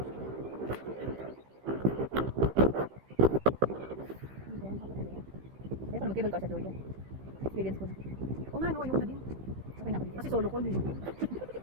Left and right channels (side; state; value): left; late; 16 ms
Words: Ayoko na mag-cable car sa Georgia. Experience ko na. O nga, no, ayoko na din. Okay na ako dito. Kasi solo ko eh.